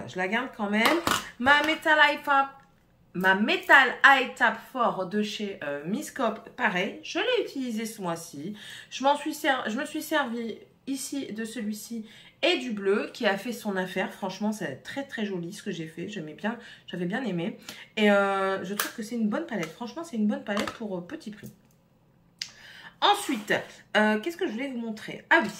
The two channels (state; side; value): identical; both; correlation 1.00